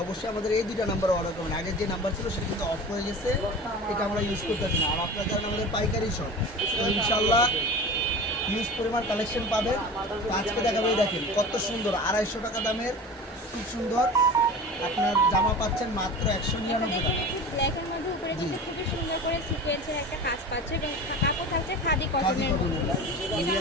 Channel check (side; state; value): both; normal; correlation 0.35